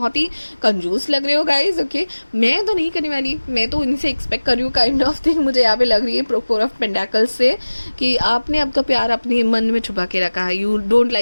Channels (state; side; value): inverted; both; correlation -1.00